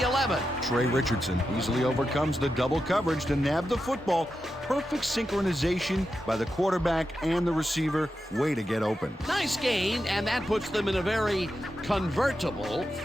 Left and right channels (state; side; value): normal; both; correlation 0.89